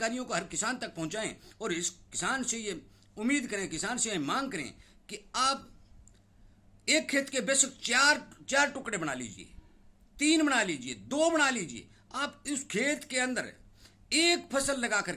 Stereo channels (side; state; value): both; identical; correlation 1.00